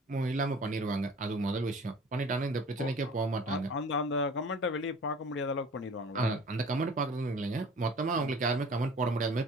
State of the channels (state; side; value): normal; both; correlation 0.45